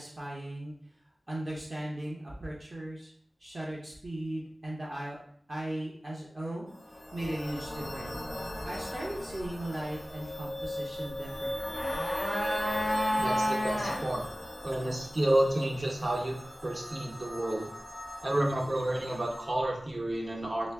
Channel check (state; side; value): normal; both; correlation 0.97